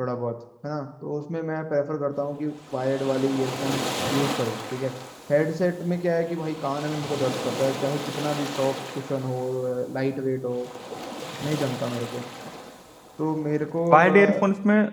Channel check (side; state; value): both; identical; correlation 1.00